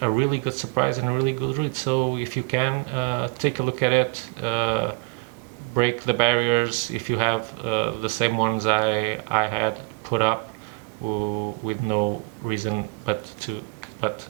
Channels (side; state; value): left; quieter; 28.2 dB